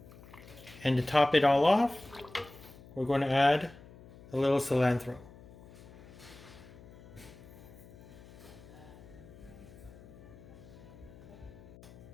And to top it all off, we're going to add a little cilantro.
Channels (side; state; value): left; noise; hum, 19 dB below the sound